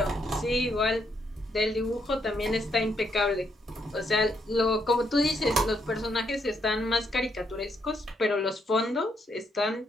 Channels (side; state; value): both; normal; correlation 0.76